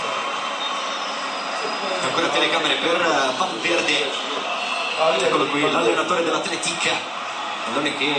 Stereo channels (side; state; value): both; identical; correlation 1.00